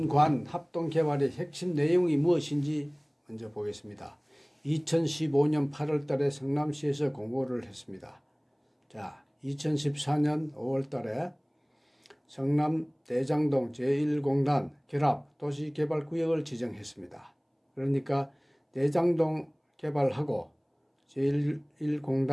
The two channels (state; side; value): identical; both; correlation 1.00